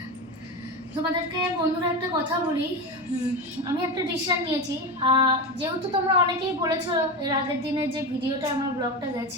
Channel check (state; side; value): normal; both; correlation 0.20